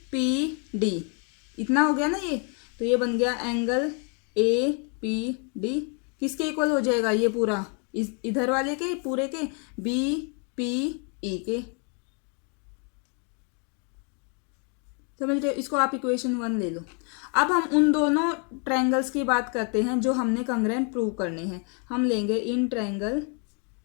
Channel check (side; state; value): right; quieter; 38.2 dB